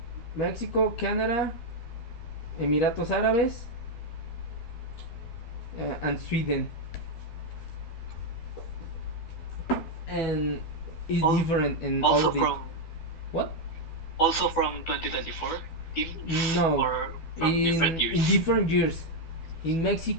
Mexico, Canada, Emiratos Árabes, and Sweden, and it's Al- different in all Also of it. from What? 2024 teams No, or from different in years? different years. In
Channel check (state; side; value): late; right; 12 ms